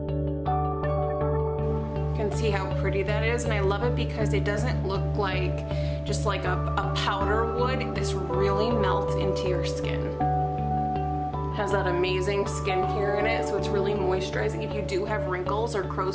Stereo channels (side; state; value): both; identical; correlation 1.00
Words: You can see how pretty that is, and I love it because it doesn't look like just like a powder would. This really melts into your skin. Has that amazing skincare in it, so it's really moisturizing. If you do have wrinkles or